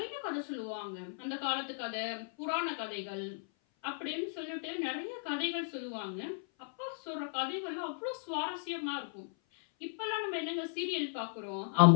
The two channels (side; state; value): right; silent; 54 dB below the other